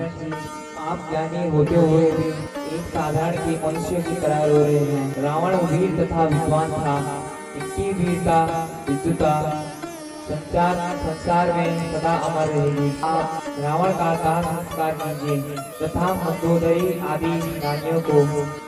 जी, आप ज्ञानी होते हुए भी एक साधारण के मनुष्य की तरह रो रहे हैं। रावण वीर तथा विद्वान था, इनकी वीरता विद्युता संसार में सदा अमर रहेगी। आप रावण का दाह संस्कार कीजिए तथा मंदोदरी आदि रानियों को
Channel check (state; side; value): identical; both; correlation 1.00